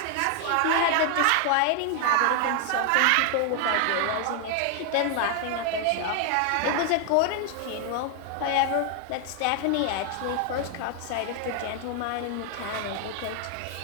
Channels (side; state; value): both; different; correlation 0.00